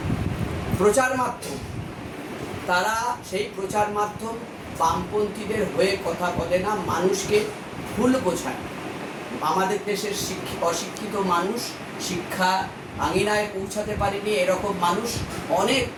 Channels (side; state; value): both; identical; correlation 1.00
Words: প্রচার মাধ্যম, তারা সেই প্রচার মাধ্যম বামপন্থীদের হয়ে কথা বলে না, মানুষকে ভুল বোঝায়। আমাদের দেশের অশিক্ষিত মানুষ শিক্ষা আঙিনায় পৌঁছাতে পারেনি, এরকম মানুষ